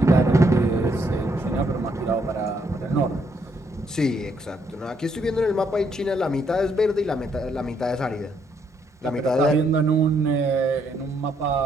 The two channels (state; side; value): normal; both; correlation 0.73